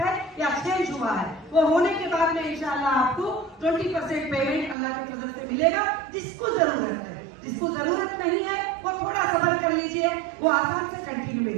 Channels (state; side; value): drops out; left; at 4.8 s